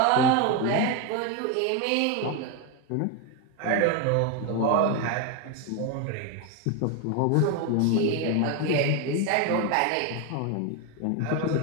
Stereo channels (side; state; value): both; different; correlation 0.02